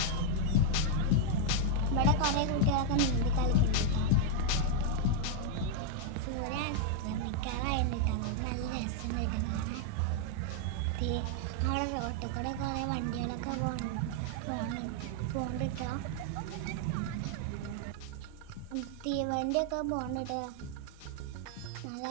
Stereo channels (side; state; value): both; different; correlation 0.00